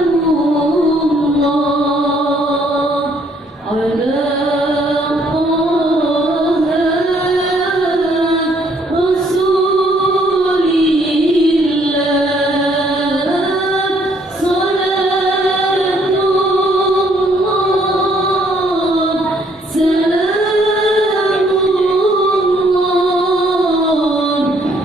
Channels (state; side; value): normal; both; correlation 0.66